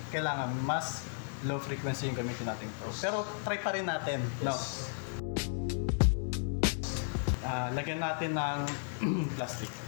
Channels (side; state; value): right; silent; digital silence